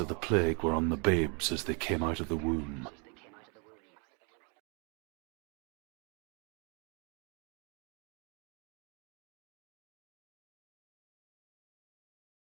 the plague were on the babes as they came out of the womb.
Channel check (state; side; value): quieter; left; 34.2 dB